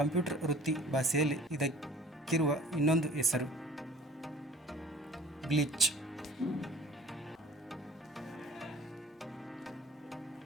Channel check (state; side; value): normal; both; correlation 0.49